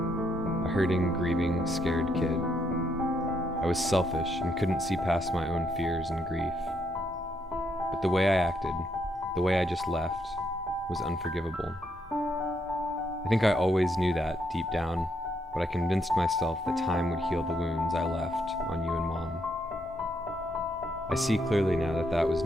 a hurting, grieving, scared kid. I was selfish and couldn't see past my own fears and grief. But the way I acted, the way I just left, was unforgivable. I think I always knew that deep down, but I convinced myself that time would heal the wounds I left on you and Mom. I see clearly now that that was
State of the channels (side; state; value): both; normal; correlation 0.76